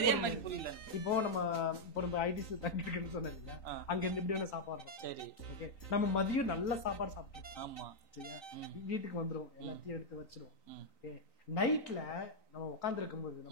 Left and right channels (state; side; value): late; right; 3.9 ms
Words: புரியல. இப்போ நம்ம ஐடிசி தங்கி இருக்குன்னு சொன்னேன் இல்லையா, அங்க இருந்து இப்படியான சாப்பாடு. சரி ஓகே, நம்ம மதியம் நல்ல சாப்பாடு சாப்பிடுவோம். ஆமா சரியா, வீட்டுக்கு வந்துருவோம், எல்லாத்தையும் எடுத்து வச்சிருவோம். ஓகே, நைட்ல நம்ம உட்கார்ந்து இருக்கும்போது